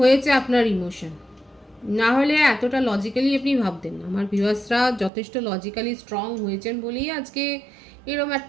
আপনার ইমোশন, না হলে এতটা লজিক্যালি আপনি ভাবতেন না। আমার ভিউয়ার্সরা যথেষ্ট লজিক্যালি স্ট্রং হয়েছেন বলেই আজকে এরকম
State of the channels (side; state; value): left; drops out; at 5.1 s